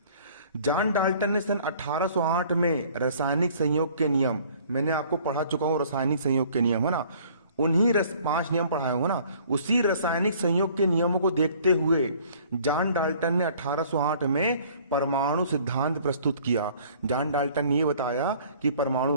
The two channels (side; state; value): both; inverted; correlation -0.55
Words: जॉन डाल्टन ने सन 1808 में रासायनिक संयोग के नियम, मैंने आपको पढ़ा चुका हूं रासायनिक संयोग के नियम, है ना। उन्हीं 5 नियम पढ़ाए हूं ना, उसी रासायनिक संयोग के नियमों को देखते हुए जॉन डाल्टन ने 1808 में परमाणु सिद्धांत प्रस्तुत किया। जॉन डाल्टन ने यह बताया कि